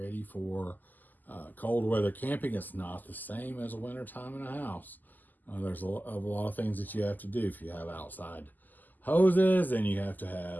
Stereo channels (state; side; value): late; right; 0.085 ms